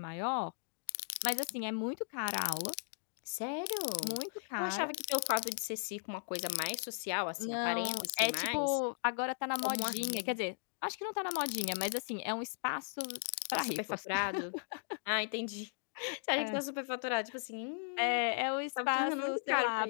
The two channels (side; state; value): right; silent; digital silence